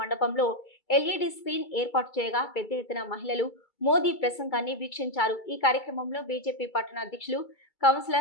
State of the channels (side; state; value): right; late; 2.3 ms